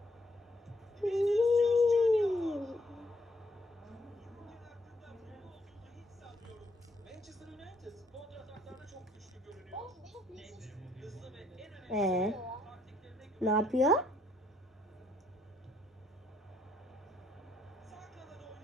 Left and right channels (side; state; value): both; normal; correlation 0.70